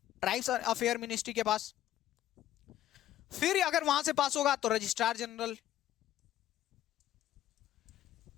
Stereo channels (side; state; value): right; quieter; 12.7 dB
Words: ट्राइब्स अफेयर मिनिस्ट्री के पास। फिर अगर वहां से पास होगा तो रजिस्ट्रार जनरल,